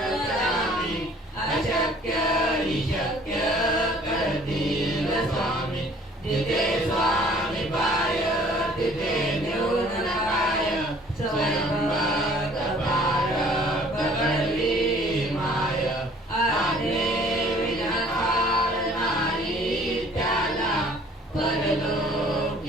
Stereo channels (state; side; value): normal; both; correlation 0.54